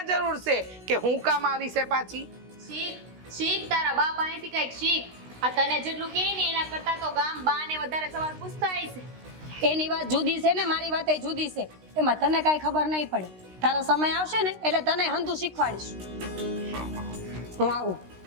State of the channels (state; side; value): late; left; 16 ms